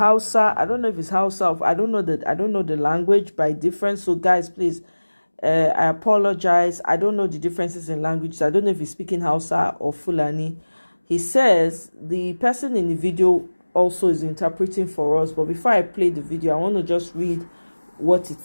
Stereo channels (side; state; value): both; inverted; correlation -1.00